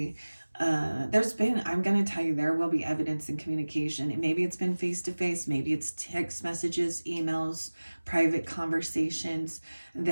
I'm going to tell you, there will be evidence in communication. And maybe it's been face to face, maybe it's text messages, emails, private conversations.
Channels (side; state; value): both; inverted; correlation -1.00